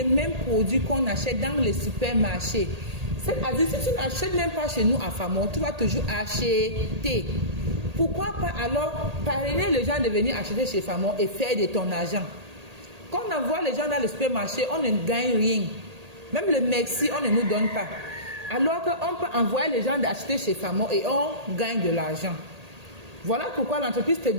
mêmes produits qu'on achète dans les supermarchés. C'est-à-dire, si tu n'achètes même pas chez nous à Famor, tu vas toujours acheter. Pourquoi pas alors parrainer les gens de venir acheter chez Famor et faire de ton argent? Quand on envoie les gens dans le supermarché, on ne gagne rien. Même le merci, on ne nous donne pas. Alors qu'on peut envoyer les gens d'acheter chez Famor et on gagne de l'argent. Voilà pourquoi l'entreprise te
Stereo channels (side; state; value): left; late; 1.8 ms